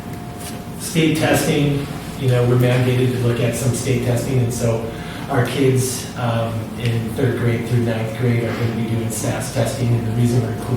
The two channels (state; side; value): identical; both; correlation 1.00